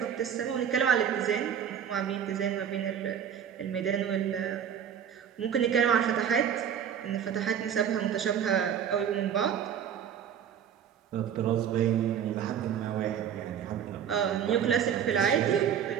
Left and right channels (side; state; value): left; quieter; 8.6 dB